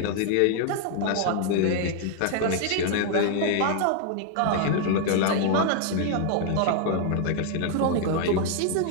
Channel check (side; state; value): both; different; correlation 0.00